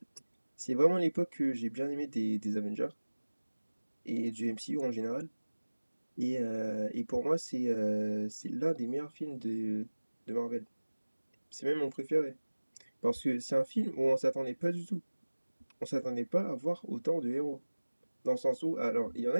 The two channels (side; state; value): both; inverted; correlation -1.00